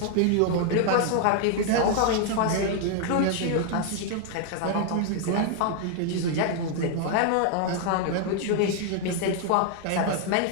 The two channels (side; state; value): both; different; correlation 0.00